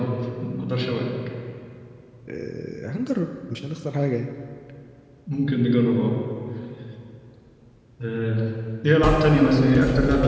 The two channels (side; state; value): both; identical; correlation 1.00